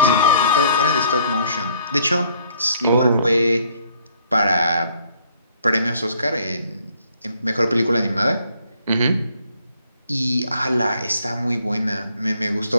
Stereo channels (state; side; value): inverted; both; correlation -0.63